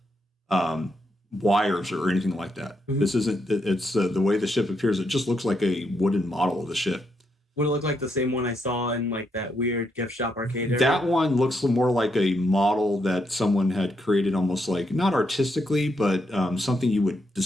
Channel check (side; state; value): both; normal; correlation 0.79